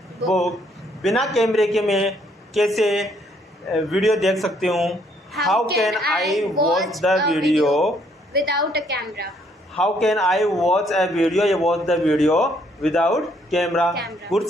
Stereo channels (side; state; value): both; normal; correlation 0.68